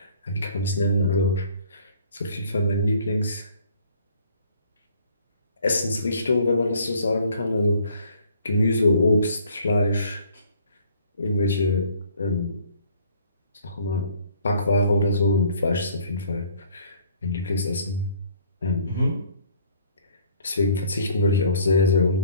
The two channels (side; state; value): both; inverted; correlation -0.58